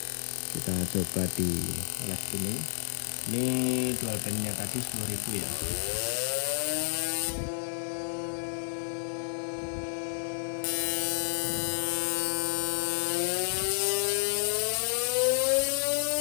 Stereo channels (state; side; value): silent; right; digital silence